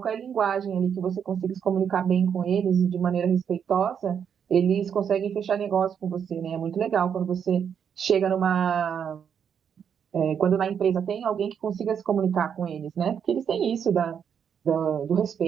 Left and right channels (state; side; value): quieter; left; 7.8 dB